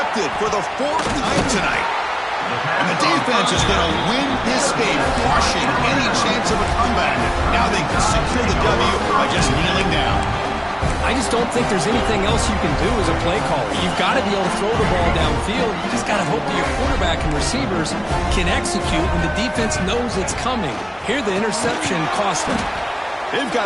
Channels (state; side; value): identical; both; correlation 1.00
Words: for the 4th time tonight. And the defense is going to win this game, crushing any chance of a comeback. Now they can secure the W by just kneeling down. I just don't think there's anything else you can do as a play caller. You've got to be able to throw the ball downfield. You just got to hope that your quarterback and receivers can execute when the defense knows it's coming. Here, the interception cost them. They've